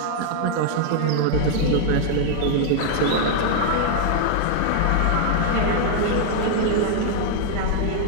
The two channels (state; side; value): different; both; correlation 0.00